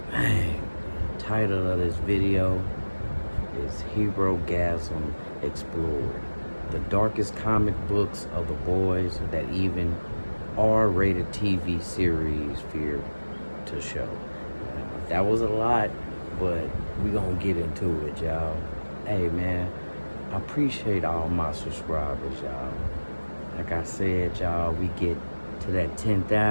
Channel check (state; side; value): inverted; both; correlation -1.00